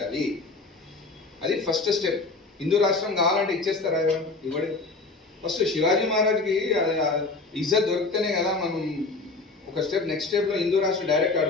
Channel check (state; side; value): quieter; right; 3.7 dB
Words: అది ఫస్ట్ స్టెప్. హిందూ రాష్ట్రం కావాలంటే ఇచ్చేస్తారా? ఇవ్వడు. ఫస్ట్ శివాజీ మహారాజ్కి ఇజ్జత్ దొరికితేనే కదా మనం ఒక స్టెప్ నెక్స్ట్ స్టెప్ లో హిందూ రాష్ట్రం డైరెక్ట్